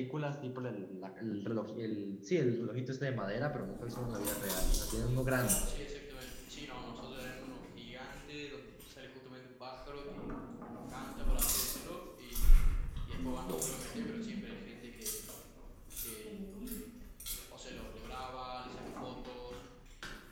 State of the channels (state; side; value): identical; both; correlation 1.00